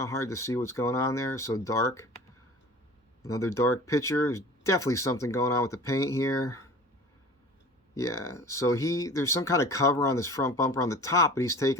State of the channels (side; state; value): both; normal; correlation 0.40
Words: hard to see what's going on there. So dark. Another dark picture. There's definitely something going on with the paint here. Yeah, so there's some kind of cover on this front bumper on the top, but he's